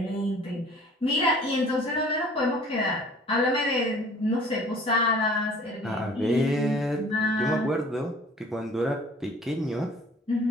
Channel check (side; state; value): both; normal; correlation 0.50